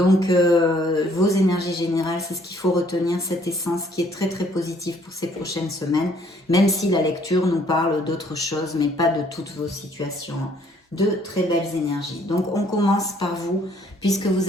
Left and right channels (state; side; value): normal; both; correlation 0.62